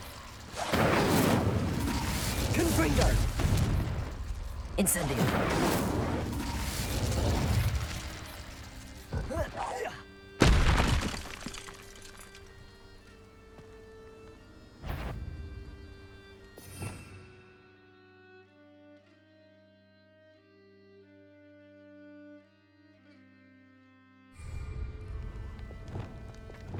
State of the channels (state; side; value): identical; both; correlation 1.00